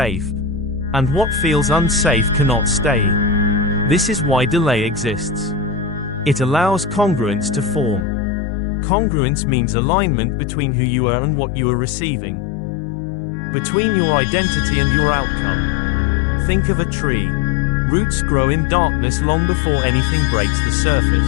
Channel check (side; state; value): right; drops out; at 8.1 s